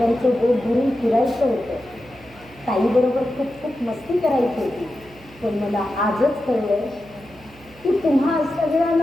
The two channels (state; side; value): noise; right; hum, 24 dB below the sound